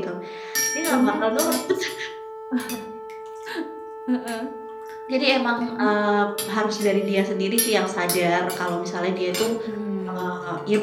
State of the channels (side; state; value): both; identical; correlation 1.00